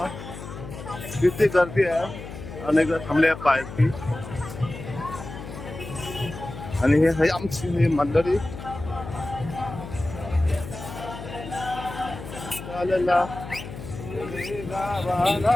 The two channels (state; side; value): noise; left; hum, 11 dB below the sound